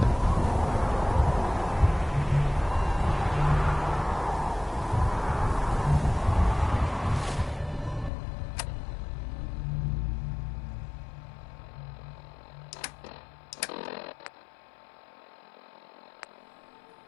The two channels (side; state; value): right; drops out; at 8.1 s